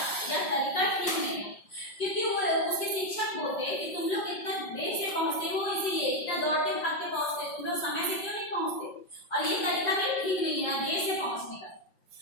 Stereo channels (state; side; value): late; right; 5.4 ms